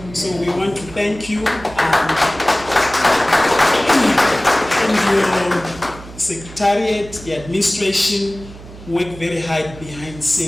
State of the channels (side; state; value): right; noise; hum, 17 dB below the sound